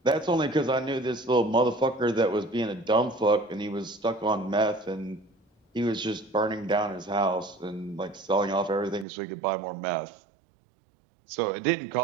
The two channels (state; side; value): drops out; left; at 9.1 s